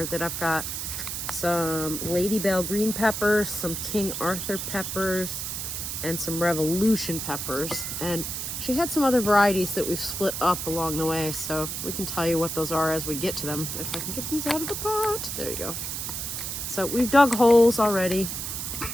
that I've got some Lady Bell green peppers, some King Arthur peppers, and some Revolution peppers. And she had some other varieties that we've split up along the way, so we can tell you what those are as we get to them. If I can get these out of the pot. There you go. So we've dug holes already,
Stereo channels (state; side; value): noise; right; hiss, 4 dB below the sound